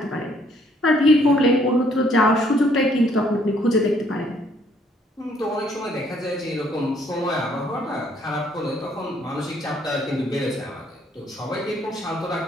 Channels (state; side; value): normal; both; correlation 0.65